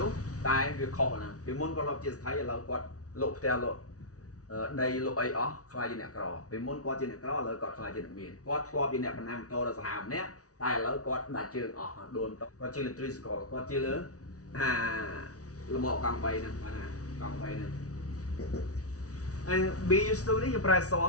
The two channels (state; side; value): late; right; 0.67 ms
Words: ោះតែវាខុសណាពីមុនគាត់លប់ជាស្ថិឥឡូវគាត់លក់ផ្ទះលក់ដីលក់អីអស់ខ្លាចជាអ្នកក្រពីមុនគាត់ជាអ្នកក្រឥឡូវគាត់ខ្លាចជាអ្នកមានគាត់ធ្លាប់ជាអ្នកបណ្ណាំម៉ូតូដល់សាហាវម្នាក់តែឥឡូវគាត់ដាច់ជើងអស់ដួលគាត់ជាលើត្រីស្កលគាត់ជាលើលំអកង់3ហ្នឹងបាទកង់3ហ្នឹង and be used to នេះយើងប្រើសម